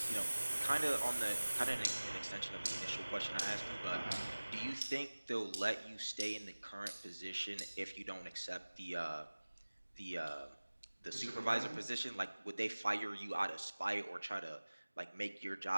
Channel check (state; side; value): inverted; both; correlation -1.00